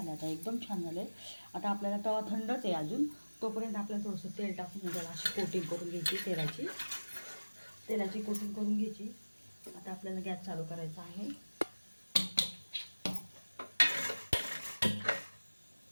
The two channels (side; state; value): both; inverted; correlation -1.00